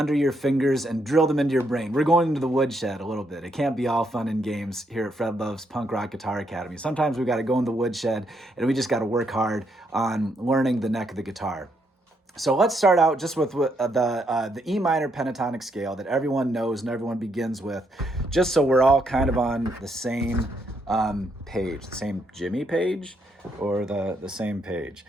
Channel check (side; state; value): both; normal; correlation 0.75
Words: your fingers and drill them into your brain. We're going into the woodshed a little bit. It can't be all fun and games here at Fred Love's Punk Rock Guitar Academy. Sometimes we got to go in the woodshed and we just got to work hard on learning the neck of the guitar. So let's start out just with the E minor pentatonic scale that everyone knows and everyone begins with, just so we're all kind of on the same page, the same Jimmy page or the same page.